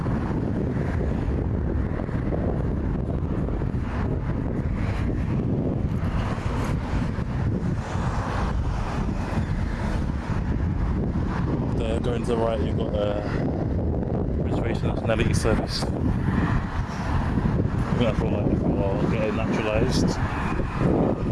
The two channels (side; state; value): both; identical; correlation 1.00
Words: Going to the right, you've got reservation nationality service. I feel like we're getting naturalised,